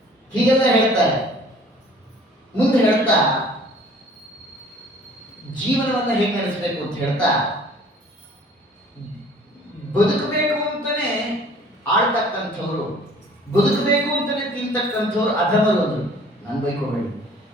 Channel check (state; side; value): normal; both; correlation 0.51